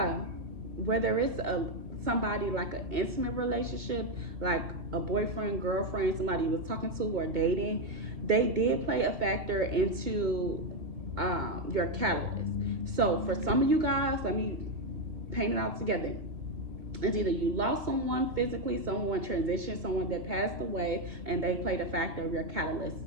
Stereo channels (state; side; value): late; left; 2.1 ms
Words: whether it's somebody like an intimate relationship, like a boyfriend, girlfriend, somebody you was talking to or dating, they did play a factor into your catalyst. So for some of you guys, let me paint it out together. It's either you lost someone physically, someone transitioned, someone that passed away, and they played a factor of your catalyst,